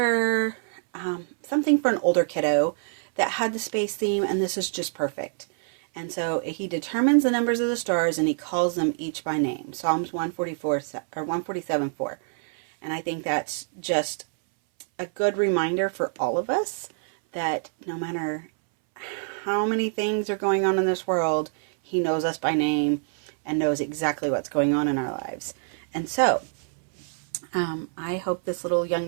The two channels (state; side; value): silent; left; 61 dB below the other